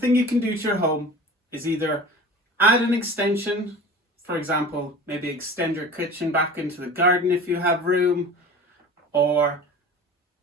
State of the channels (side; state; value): both; normal; correlation 0.38